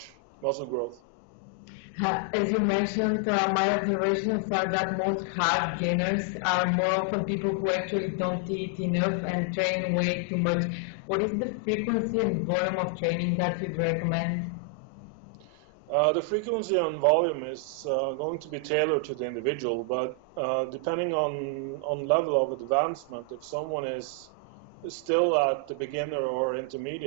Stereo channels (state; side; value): normal; both; correlation 0.00